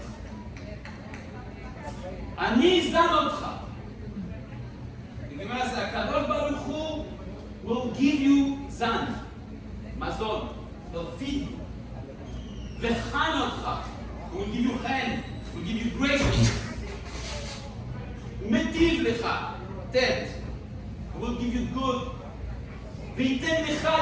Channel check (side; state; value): both; identical; correlation 1.00